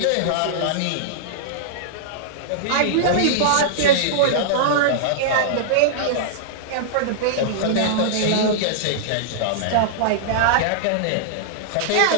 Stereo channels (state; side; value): different; both; correlation -0.02